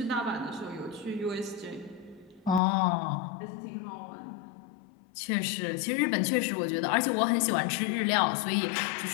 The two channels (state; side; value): drops out; right; at 2.6 s